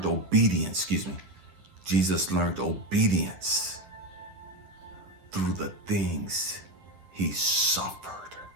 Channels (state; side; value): late; left; 10 ms